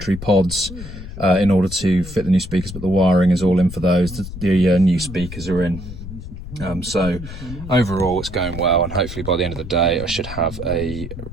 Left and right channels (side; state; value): left; noise; rumble, 11 dB below the sound